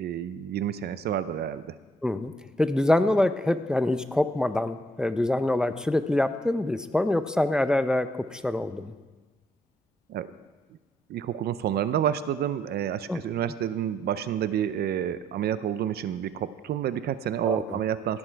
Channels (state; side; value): normal; both; correlation 0.68